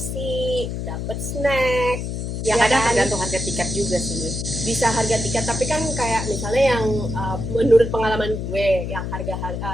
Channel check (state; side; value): noise; left; hum, 4 dB below the sound